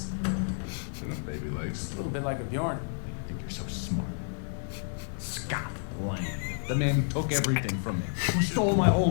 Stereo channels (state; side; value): silent; right; digital silence